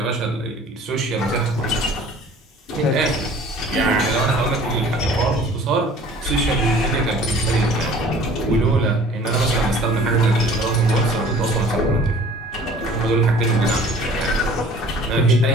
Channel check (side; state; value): both; normal; correlation 0.49